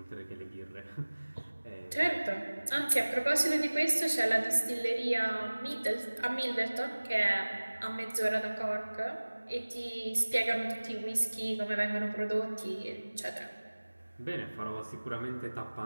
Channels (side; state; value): both; inverted; correlation -1.00